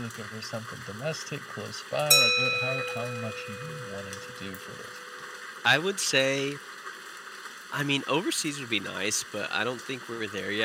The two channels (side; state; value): both; identical; correlation 1.00